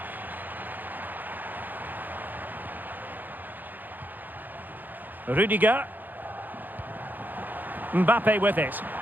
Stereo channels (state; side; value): late; left; 0.086 ms